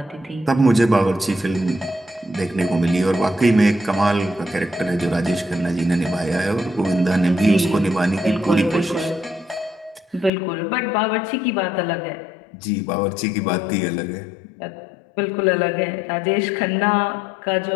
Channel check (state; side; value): drops out; right; at 10.3 s